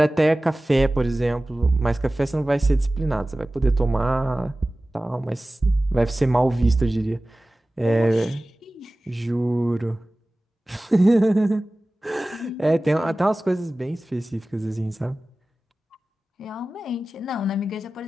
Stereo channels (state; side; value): normal; both; correlation 0.97